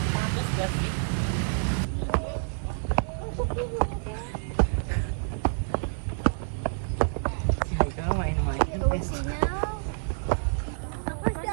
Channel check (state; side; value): silent; left; digital silence